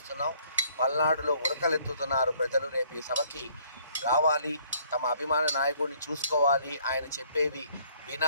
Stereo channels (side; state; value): both; inverted; correlation -0.63